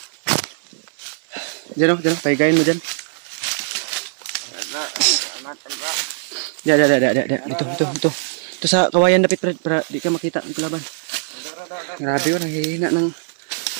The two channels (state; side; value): silent; left; 58 dB below the other